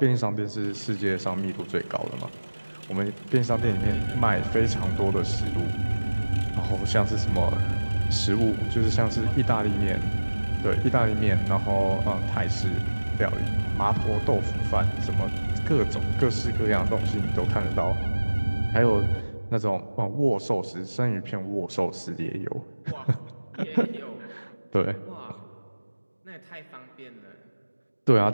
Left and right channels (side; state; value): both; inverted; correlation -1.00